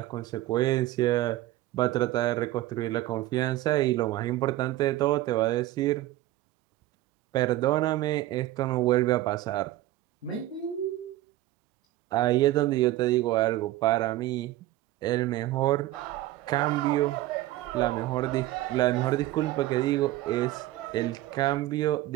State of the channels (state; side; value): quieter; left; 15.9 dB